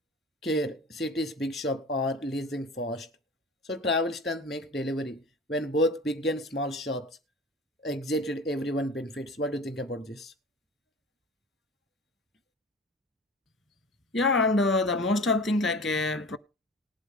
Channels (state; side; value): normal; both; correlation 0.38